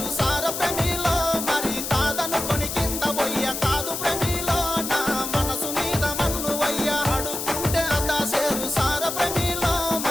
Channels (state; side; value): noise; left; hiss, 4 dB below the sound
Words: సార ప్రేమిలో మరి కాదనుకొని కింద పోయ్య కాదు ప్రేమిలో నా మనసు మీద మన్ను వయ్య అడుక్కుంటే అదా సేరు సార ప్రేమిలో